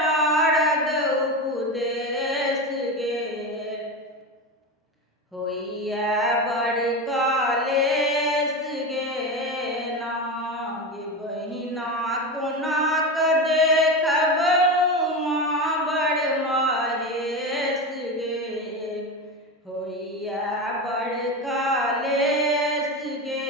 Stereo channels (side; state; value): both; normal; correlation 0.21